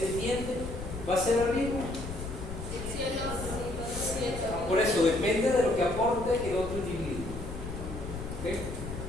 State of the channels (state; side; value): noise; left; rumble, 9 dB below the sound